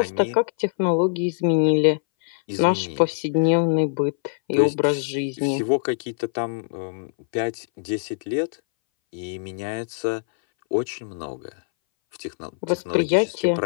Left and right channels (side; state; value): right; silent; 61 dB below the other